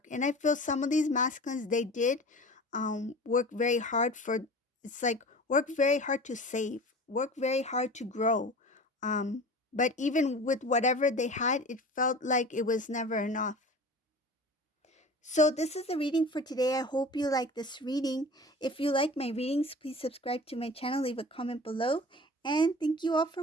And I feel some of these masculines, they did work very hard for, it's like work very hard to save, work very hard to grow. But even with whatever they had, it felt like it was never enough. So this is the reading for today. I hope you like this reading. If you like my readings, please subscribe to my channel, leave a comment below, and thank you all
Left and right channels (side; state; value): both; normal; correlation 0.38